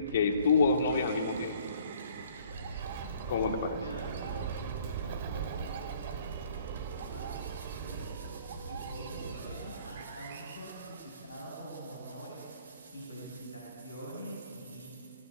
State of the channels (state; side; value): inverted; both; correlation -0.58